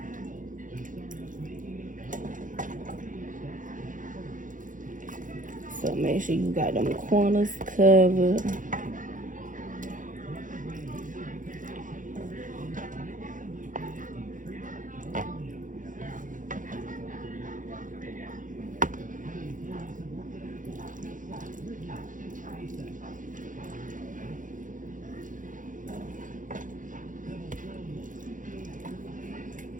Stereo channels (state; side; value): late; left; 0.38 ms